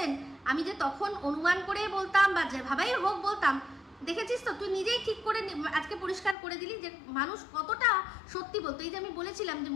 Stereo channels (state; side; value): drops out; right; at 6.4 s